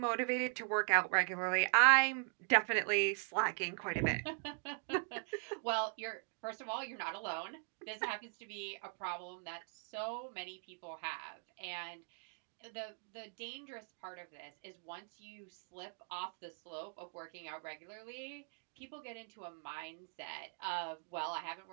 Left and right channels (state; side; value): silent; left; 51 dB below the other